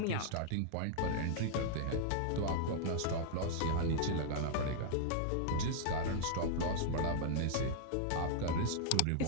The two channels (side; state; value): both; different; correlation -0.01